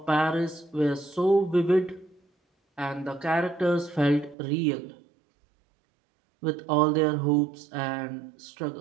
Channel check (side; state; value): left; drops out; at 4.4 s